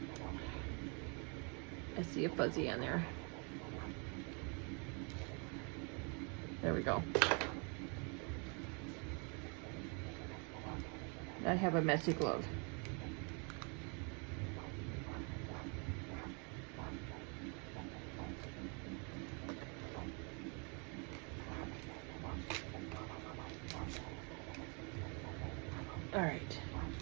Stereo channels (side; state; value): left; quieter; 35.0 dB